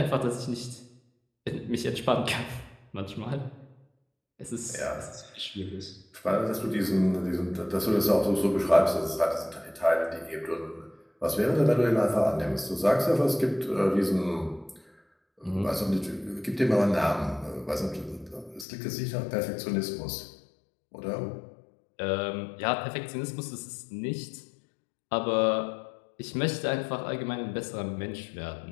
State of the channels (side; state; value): right; drops out; at 18.7 s